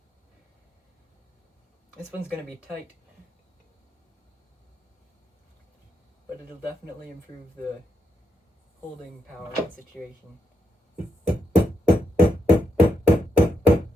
This one's going to be tight, but it'll definitely improve the holding power of the situation.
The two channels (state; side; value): normal; both; correlation 0.82